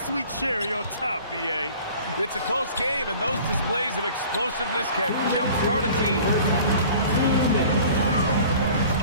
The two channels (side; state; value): both; inverted; correlation -0.46